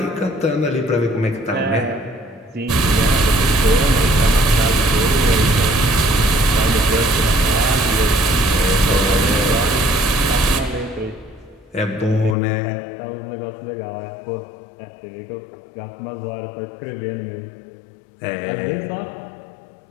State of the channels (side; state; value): right; drops out; at 12.4 s